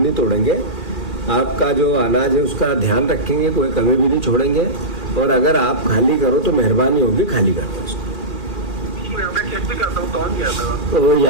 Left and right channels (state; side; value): late; left; 2.4 ms